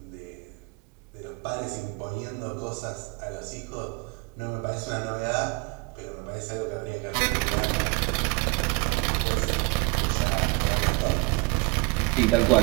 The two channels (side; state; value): left; quieter; 26.2 dB